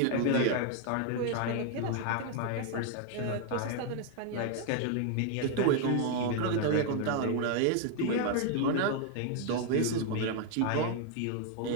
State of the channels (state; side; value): different; both; correlation 0.00